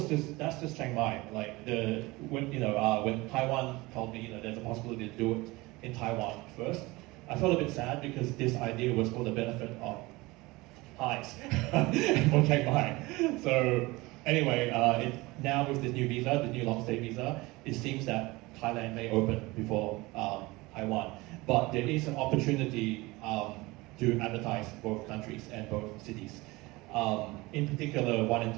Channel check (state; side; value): quieter; left; 21.9 dB